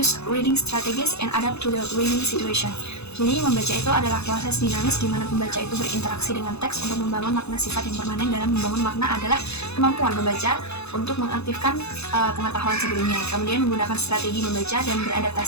reading strategies, and adapt to the reading situation. Jadi, membaca itu adalah proses dinamis di mana pembaca itu berinteraksi dengan teks untuk membangun makna. Sifat yang permanen dalam membangun makna adalah kemampuan pembaca untuk mengaktifkan pengetahuan sebelumnya, kemudian menggunakan strategi membaca dan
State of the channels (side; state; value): right; late; 0.79 ms